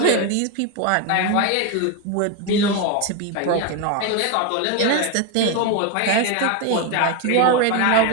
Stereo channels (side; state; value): both; different; correlation 0.02